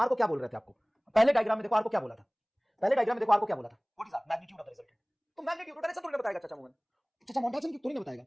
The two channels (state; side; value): identical; both; correlation 1.00